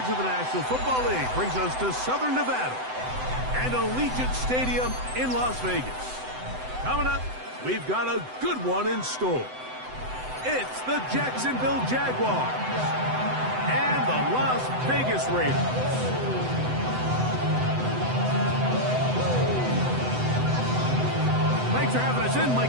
of the National Football League brings us to Southern Nevada and Allegiant Stadium in Las Vegas. Coming up, we've got a good one in store. It's the Jacksonville Jaguars and the Las Vegas Raiders. Thanks for having us in.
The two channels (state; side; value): late; left; 7.9 ms